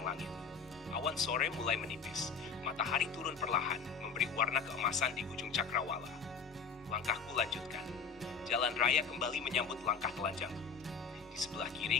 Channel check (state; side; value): quieter; right; 5.5 dB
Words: langit. Awan sore mulai menipis, matahari turun perlahan, memberi warna keemasan di ujung cakrawala. Langkahku lanjutkan. Jalan raya kembali menyambut langkah telanjangku. Di sebelah kiri,